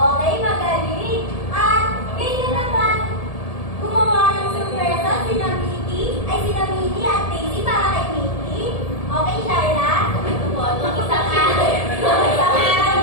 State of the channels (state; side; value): late; right; 1.7 ms